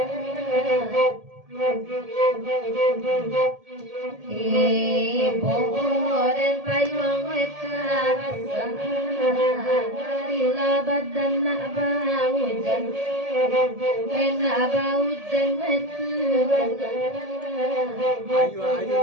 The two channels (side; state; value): left; late; 1.7 ms